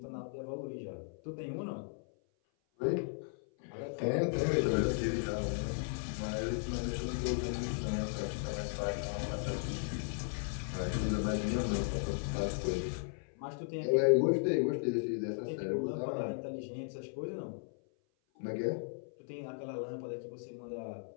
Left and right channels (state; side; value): silent; right; 54 dB below the other